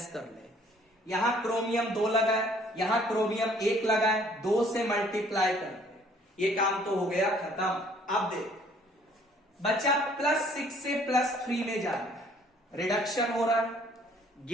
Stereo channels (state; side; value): normal; both; correlation 0.59